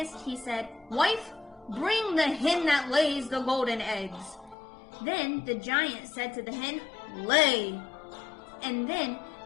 he said, Wife, bring the hen that lays the golden eggs. Then the giant said to the hen, Lay. And then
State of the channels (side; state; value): right; drops out; at 4.5 s